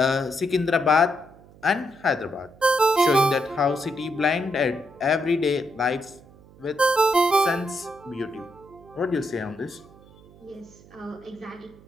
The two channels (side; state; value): right; noise; hum, 24 dB below the sound